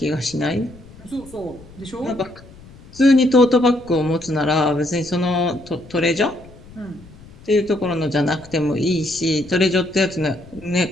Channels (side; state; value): left; noise; rumble, 21 dB below the sound